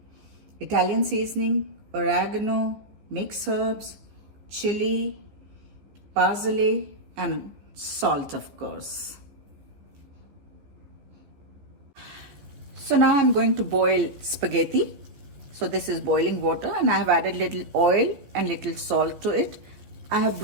Italian seasoning, oregano, mixed herbs, chili, parsley and salt of course. So now I'm going to boil spaghetti. So this is boiling water and I have added little oil and little salt to it. I have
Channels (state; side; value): late; left; 15 ms